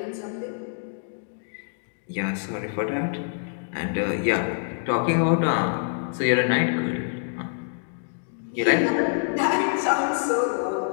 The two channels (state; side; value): silent; right; digital silence